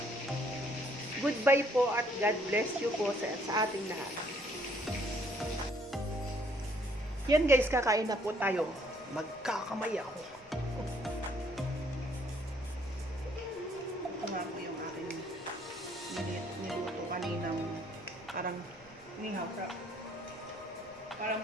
Goodbye po at God bless you po sa ating lahat. Yan guys, kakain na po tayo. Magkakamay ako. Ito nga po yung aking niluto kaninang parang inihaw. Parang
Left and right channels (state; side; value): noise; right; rumble, 26 dB below the sound